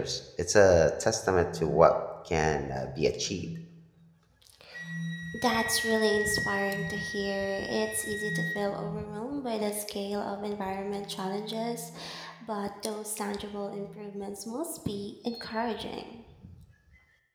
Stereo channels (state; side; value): identical; both; correlation 1.00